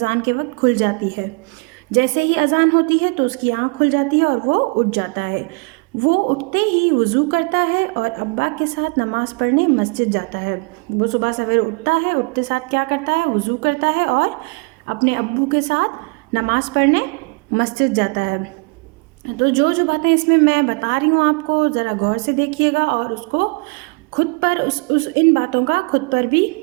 के वक्त खुल जाती है। जैसे ही अजान होती है तो उसकी आंख खुल जाती है और वो उठ जाता है। वो उठते ही वज़ू करता है और अब्बा के साथ नमाज़ पढ़ने मस्जिद जाता है। वो सुबह सवेरे उठता है, उठते साथ क्या करता है? वज़ू करता है और अपने अब्बू के साथ नमाज़ पढ़ने मस्जिद जाता है। तो जो जो बातें इसमें मैं बता रही हूँ आपको, ज़रा गौर से देखिएगा और उसको खुद पर इन बातों का खुद पर भी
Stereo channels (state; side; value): quieter; left; 32.9 dB